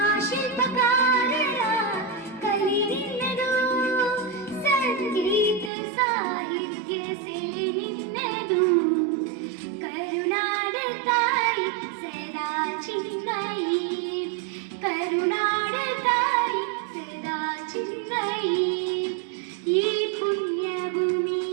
ಕಲೆ ನಿನ್ನದು ಸಂಗೀತ ಸಾಹಿತ್ಯ ಸೆಲೆ ನಿನ್ನದು ಕರುನಾಡ ತಾಯಿ ಸದಾ ಚಿನ್ಮಯಿ ಕರುನಾಡ ತಾಯಿ ಸದಾ ಚಿನ್ಮಯಿ ಈ ಪುಣ್ಯ ಭೂಮಿ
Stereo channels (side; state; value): left; drops out; at 5.7 s